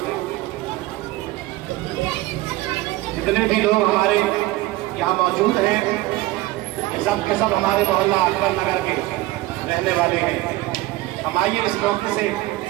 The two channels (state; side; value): quieter; left; 18.1 dB